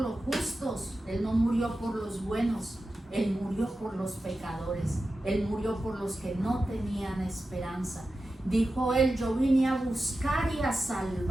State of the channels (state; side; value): normal; both; correlation 0.93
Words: justos, Él no murió por los buenos, Él murió por los pecadores, Él murió por los que no tenían esperanza. Dijo Él, yo vine a buscar y a